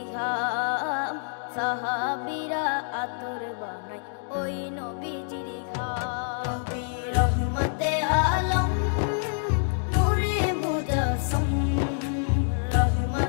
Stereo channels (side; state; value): right; silent; digital silence